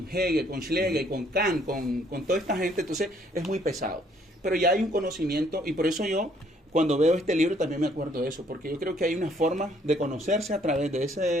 Hegel, con Schlegel, con Kant, con toda esta gente, entonces es muy pesado. Pero ya hay un conocimiento, y por eso yo, cuando veo este libro, también me acuerdo de eso, porque yo creo que hay una forma de conocerse a través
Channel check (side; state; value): both; normal; correlation 0.65